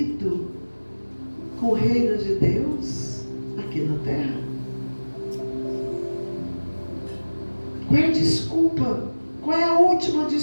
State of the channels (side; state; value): both; inverted; correlation -1.00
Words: com o reino de Deus aqui na terra? Qual é a desculpa Qual é a última